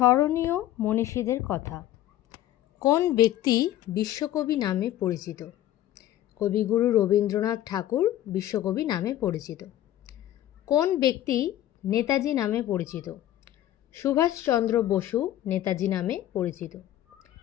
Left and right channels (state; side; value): quieter; right; 13.0 dB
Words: মনীষীদের কথা। কোন ব্যক্তি বিশ্বকবি নামে পরিচিত? কবিগুরু রবীন্দ্রনাথ ঠাকুর বিশ্বকবি নামে পরিচিত। কোন ব্যক্তি নেতাজি নামে পরিচিত? সুভাষচন্দ্র বসু নেতাজি নামে পরিচিত।